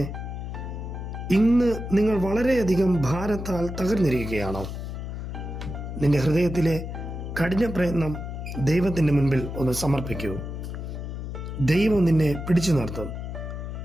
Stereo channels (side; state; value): left; noise; hum, 7 dB below the sound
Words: ഇന്ന് നിങ്ങൾ വളരെയധികം ഭാരത്താൽ തകർന്നിരിക്കുകയാണോ? നിന്റെ ഹൃദയത്തിലെ കഠിന പ്രയത്നം ദൈവത്തിൻ്റെ മുൻപിൽ ഒന്ന് സമർപ്പിക്കൂ. ദൈവം നിന്നെ പിടിച്ചു നിർത്തും.